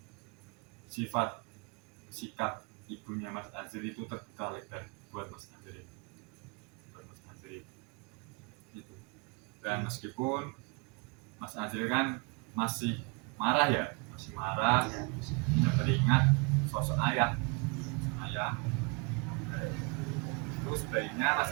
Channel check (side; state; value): left; quieter; 30.8 dB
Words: sikap ibunya Mas Azril itu terbuka lebar buat Mas Azril. Gitu. Dan meskipun Mas Azril kan masih marah ya, kita teringat sosok ayah. Terus sebaiknya Mas